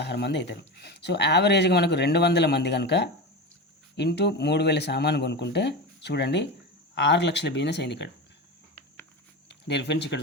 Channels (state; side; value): normal; both; correlation 0.23